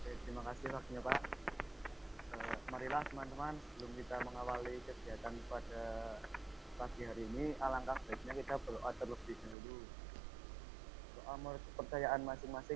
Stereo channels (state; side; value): drops out; left; at 9.6 s